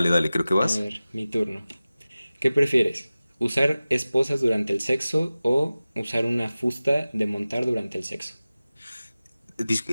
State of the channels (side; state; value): both; inverted; correlation -0.97